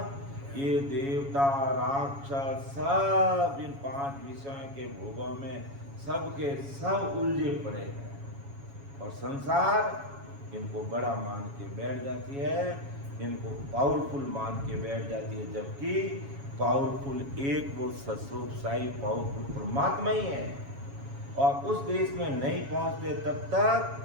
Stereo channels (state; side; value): late; left; 7.2 ms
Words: ये देवता राक्षस सब इन पांच विषयों के भोगों में सबके सब उलझे पड़े हैं और संसार इनको बड़ा मान के बैठ जाती है, इनको पावरफुल मान के बैठ जाती है, जबकि पावरफुल एक वो सस्वरूपशाही पावरफुल परमात्मा ही है। और उस देश में नहीं पहुंचते तब